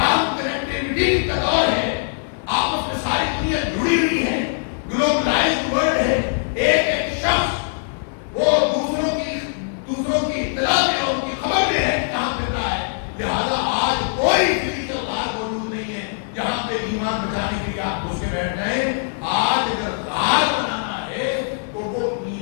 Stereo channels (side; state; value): right; silent; digital silence